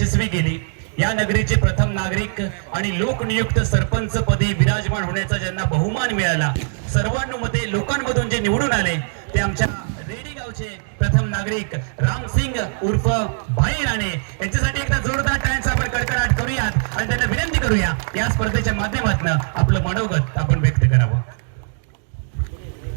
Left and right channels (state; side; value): silent; left; digital silence